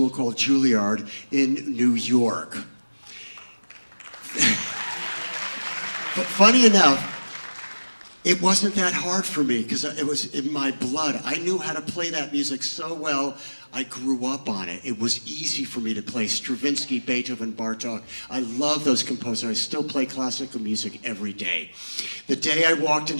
called Juilliard in New York. But funny enough, it wasn't that hard for me because it was in my blood. I knew how to play that music so well. I grew up on it. It was easy for me to play Stravinsky, Beethoven, Bartok. I love those composers. I still play classical music every day. The day I walked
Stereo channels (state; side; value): inverted; both; correlation -1.00